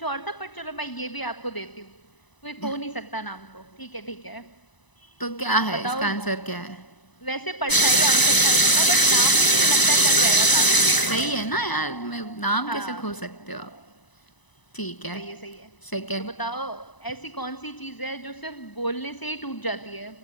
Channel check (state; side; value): late; right; 1.0 ms